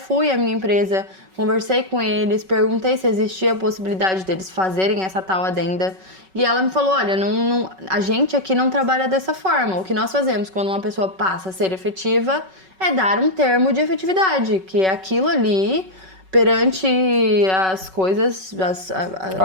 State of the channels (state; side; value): late; left; 5.3 ms